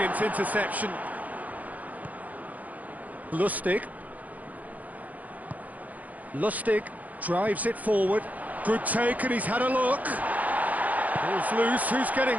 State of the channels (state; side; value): late; left; 0.077 ms